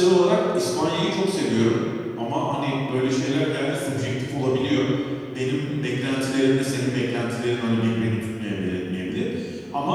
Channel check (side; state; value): both; identical; correlation 1.00